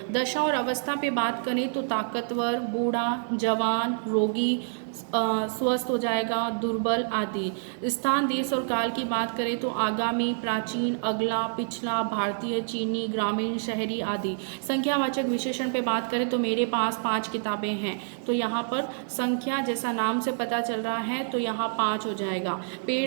दशा और अवस्था पे बात करें तो ताकतवर, बूढ़ा, जवान, रोगी, स्वस्थ हो जाएगा, दुर्बल आदि। स्थान, देश और काल की बात करें तो आगामी, प्राचीन, अगला, पिछला, भारतीय, चीनी, ग्रामीण, शहरी आदि। संख्यावाचक विशेषण पे बात करें तो मेरे पास 5 किताबें हैं, तो यहाँ पर संख्या जैसा नाम से पता चल रहा है, तो यहाँ 5 हो जाएगा।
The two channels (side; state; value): left; silent; digital silence